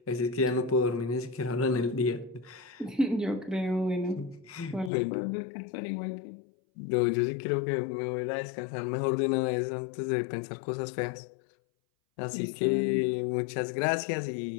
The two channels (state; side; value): drops out; right; at 4.9 s